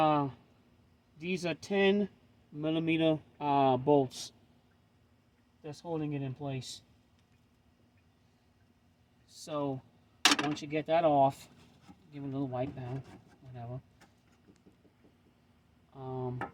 10mm bolts that's holding it in place. So once you get that off, give it a little wipe down, whatever.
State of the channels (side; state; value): both; identical; correlation 1.00